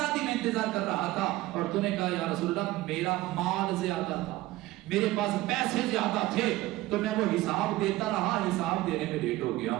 دی، میں انتظار کر رہا تھا، اور تو نے کہا یا رسول اللہ میرا مال زیادہ تھا، میرے پاس پیسے زیادہ تھے، تو میں وہ حساب دیتا رہا، حساب دینے میں لیٹ ہو گیا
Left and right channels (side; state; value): left; quieter; 17.6 dB